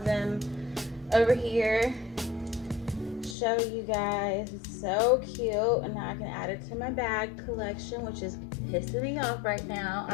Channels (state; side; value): drops out; right; at 3.4 s